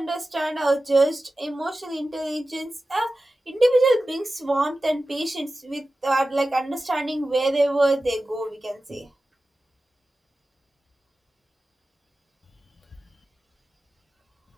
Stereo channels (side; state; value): both; normal; correlation 0.94